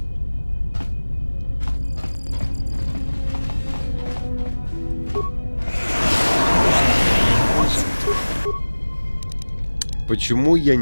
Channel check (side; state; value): both; inverted; correlation -1.00